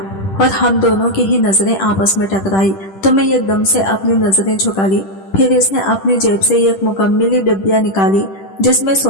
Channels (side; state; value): right; late; 10 ms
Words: और हम दोनों की ही नजरें आपस में टकराई तो मैं एकदम से अपनी नजरें झुका ली। फिर इसने अपनी जेब से एक मुकम्मली डिब्बिया निकाली जिसमें